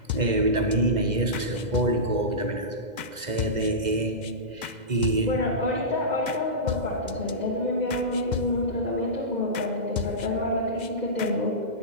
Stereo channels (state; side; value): late; left; 2.0 ms